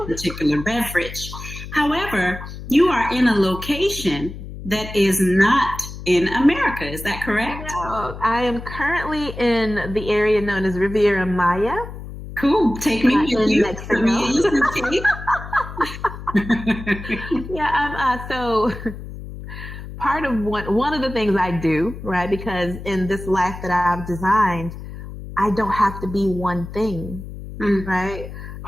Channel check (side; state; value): left; noise; hum, 11 dB below the sound